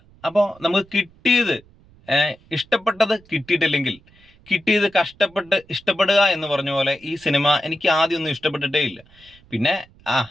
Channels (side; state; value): right; noise; rumble, 28 dB below the sound